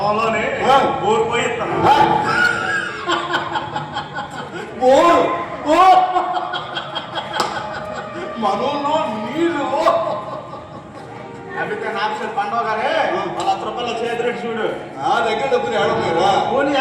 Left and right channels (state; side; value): identical; both; correlation 1.00